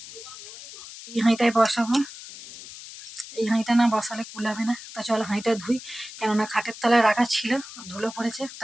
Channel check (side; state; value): left; noise; hiss, 14 dB below the sound